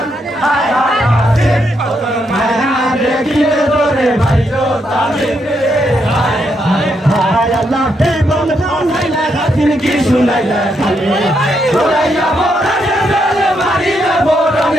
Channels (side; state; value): both; normal; correlation 0.79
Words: হায় হায় হায় দেখিলে ধরে ভাইরো তামিলে হায় হায় হায় আল্লাহ তে বল বল হাইলা গাছিন কি শুনাইলা খালি ওরাইয়া বড়ানে বেলে মারিয়া